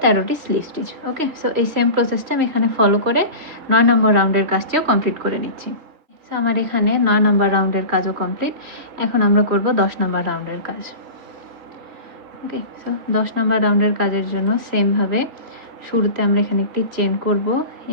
13টি স্লিপ স্টিচ। ওকে, সো এই সেম প্রসেসটা আমি এখানে ফলো করে 9 নম্বর রাউন্ডের কাজটিও কমপ্লিট করে নিচ্ছি। সো আমার এখানে 9 নম্বর রাউন্ডের কাজও কমপ্লিট। এখন আমরা করব 10 নম্বর রাউন্ডের কাজ। ওকে, সো 10 নম্বর রাউন্ডের কাজের জন্য সেমভাবে শুরুতে আমরা এখানে একটি চেন করব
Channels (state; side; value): late; left; 3.4 ms